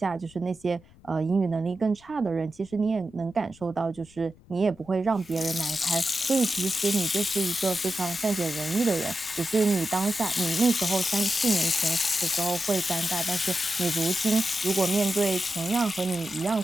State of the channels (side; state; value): left; noise; rumble, 26 dB below the sound